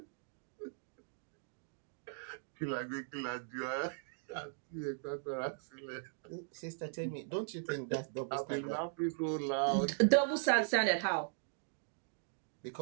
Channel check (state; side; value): silent; left; digital silence